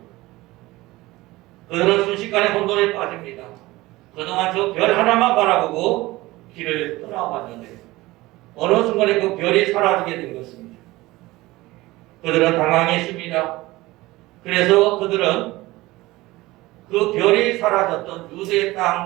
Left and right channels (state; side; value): quieter; left; 19.3 dB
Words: 그들은 순식간에 혼돈에 빠집니다. 그동안 저 별 하나만 바라보고 길을 떠나왔는데 어느 순간에 그 별이 사라지게 된 것입니다. 그들은 당황했습니다. 그래서 그들은 그 별이 사라졌던 유대